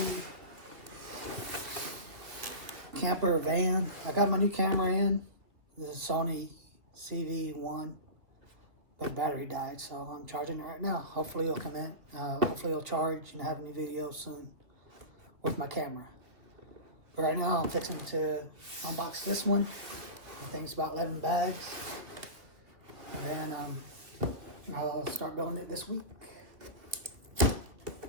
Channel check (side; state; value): left; late; 2.4 ms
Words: camper van. I got my new camera in. This is Sony CV1, but battery died, so I'm charging it right now. Hopefully it'll come in. Hopefully it'll charge and have a new video soon with my camera. But right now I'm fixing to unbox this one. I think it's about 11 bags. And then I'll start building it this week.